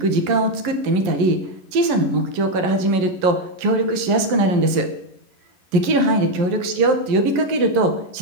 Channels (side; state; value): left; late; 11 ms